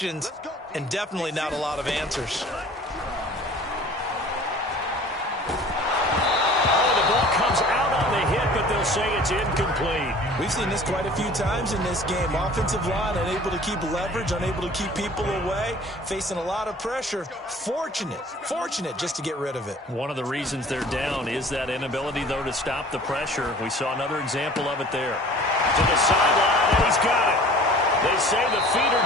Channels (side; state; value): both; normal; correlation 0.47